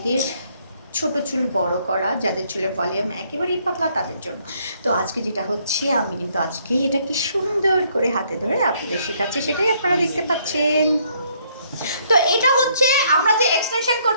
ছোট চুল বড় করা, যাদের চুলের ভলিউম একেবারেই পাতলা তাদের জন্য। তো আজকে যেটা হচ্ছে, আমি কিন্তু আজকে এটাকে সুন্দর করে হাতে ধরে আপনাদের শেখাচ্ছি, সেটাই আপনারা দেখতে পাচ্ছেন। তো এটা হচ্ছে আমরা যে এক্সটেনশন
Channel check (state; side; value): inverted; both; correlation -0.68